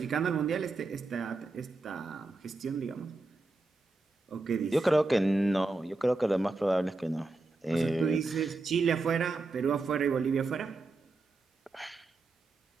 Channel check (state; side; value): quieter; left; 3.3 dB